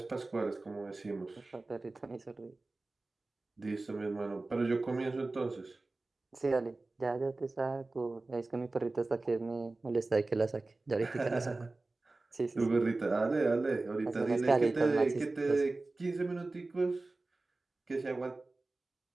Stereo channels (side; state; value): left; quieter; 3.2 dB